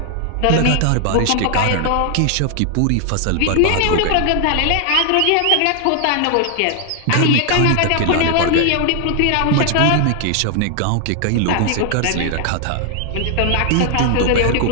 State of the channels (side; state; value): both; different; correlation 0.00